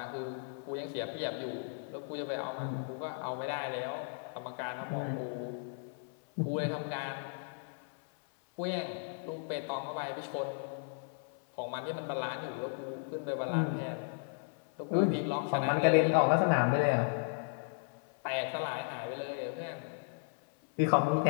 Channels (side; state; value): right; silent; 54 dB below the other